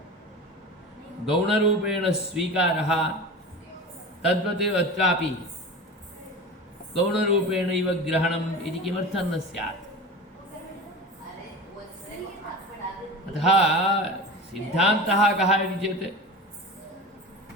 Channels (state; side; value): normal; both; correlation 0.31